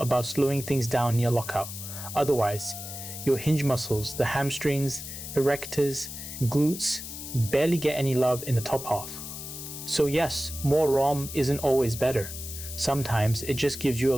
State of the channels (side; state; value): left; noise; hiss, 9 dB below the sound